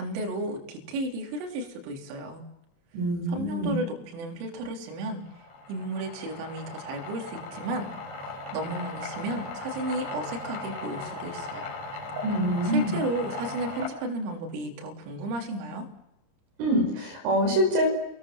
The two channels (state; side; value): late; left; 30 ms